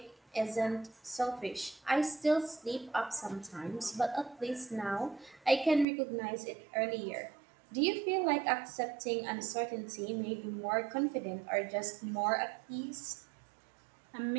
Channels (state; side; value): drops out; left; at 5.9 s